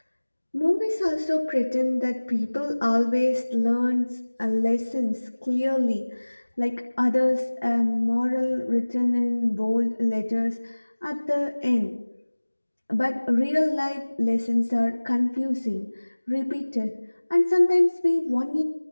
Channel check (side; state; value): both; inverted; correlation -1.00